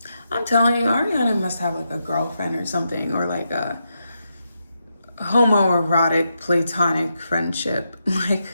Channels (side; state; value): both; inverted; correlation -0.84